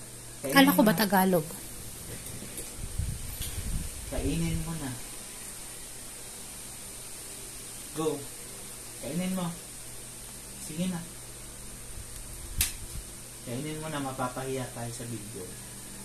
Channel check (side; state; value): both; identical; correlation 1.00